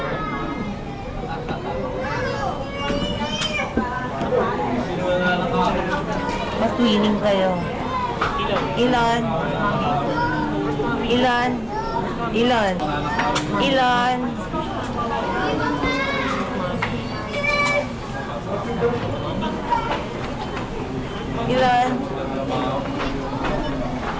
Matwining kayo. Ilan? Ilan? Ilan? Ilan? Ilan?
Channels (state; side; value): identical; both; correlation 1.00